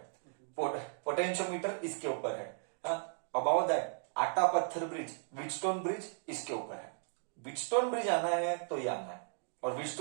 पोटेंशियोमीटर इसके ऊपर है। अबाउट दैट, आटा पत्थर ब्रिज, व्हीटस्टोन ब्रिज इसके ऊपर है। व्हीटस्टोन ब्रिज आना है तो ये आना है। और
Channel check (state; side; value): silent; left; digital silence